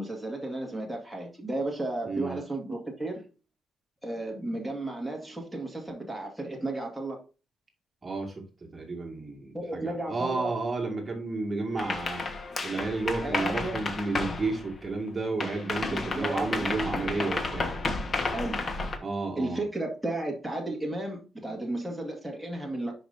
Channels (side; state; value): both; normal; correlation 0.84